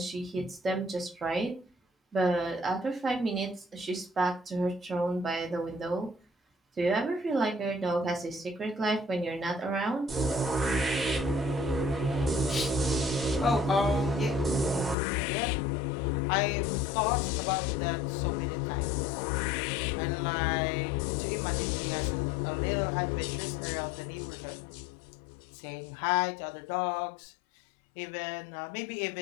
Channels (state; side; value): drops out; right; at 15.0 s